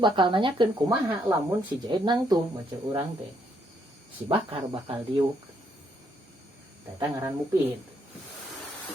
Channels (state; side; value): normal; both; correlation 0.72